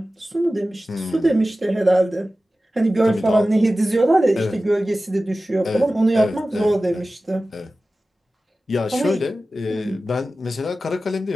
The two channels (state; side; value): normal; both; correlation 0.95